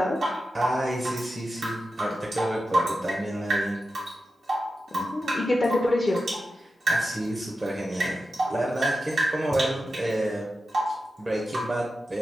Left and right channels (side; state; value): both; normal; correlation 0.91